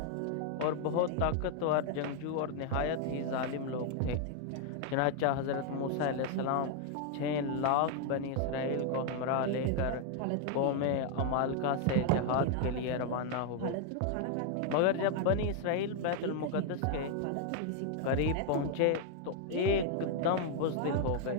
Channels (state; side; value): different; both; correlation 0.00